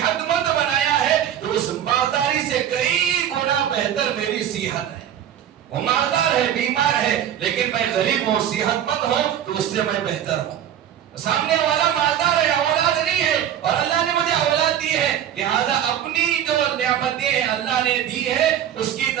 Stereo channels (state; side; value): quieter; left; 10.3 dB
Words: مند بنایا ہے تو اس مالداری سے کئی گنا بہتر میری صحت ہے. وہ مالدار ہے، بیمار ہے، لیکن میں غریب ہوں، صحت مند ہوں تو اس سے میں بہتر ہوں. سامنے والا مالدار ہے، اولاد نہیں ہے، اور اللہ نے مجھے اولاد دی ہے، لہذا اپنی جو نعمتیں اللہ نے دی ہے اس کی